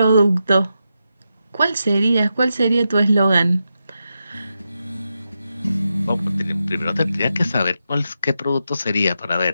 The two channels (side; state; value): both; inverted; correlation -0.87